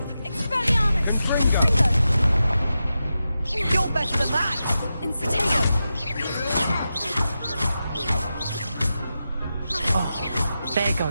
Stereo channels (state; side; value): inverted; both; correlation -0.90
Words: Expelliarmus. Confringo. You're better than that! Incitego. Oh, there